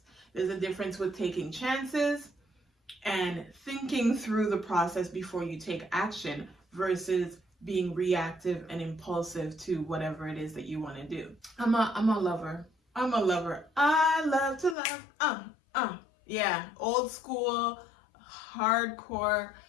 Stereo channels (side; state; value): right; drops out; at 14.8 s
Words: There's a difference with taking chances and thinking through the process before you take action versus being reactive and impulsive to whatever it is that you want to do. I'm a lover. I love to love. Yeah, old school, hardcore,